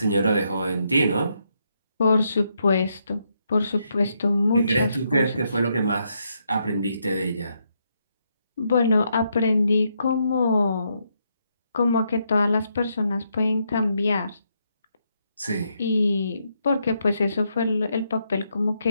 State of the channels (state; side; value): inverted; both; correlation -0.78